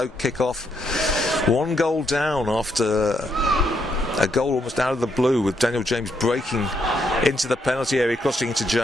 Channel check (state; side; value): normal; both; correlation 0.77